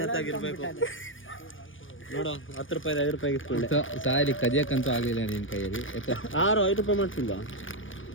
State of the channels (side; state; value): right; late; 0.57 ms